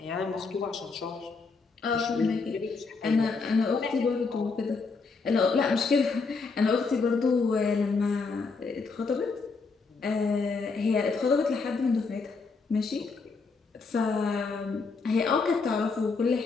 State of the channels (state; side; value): quieter; right; 4.5 dB